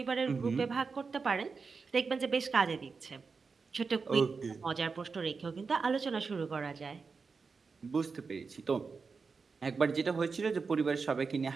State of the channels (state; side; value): quieter; left; 4.9 dB